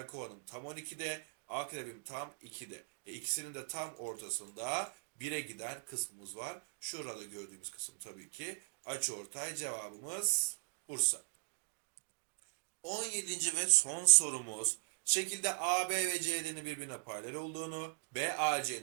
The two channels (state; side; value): silent; left; digital silence